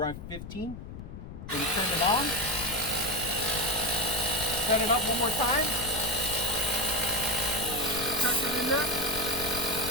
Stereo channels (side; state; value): left; noise; rumble, 11 dB below the sound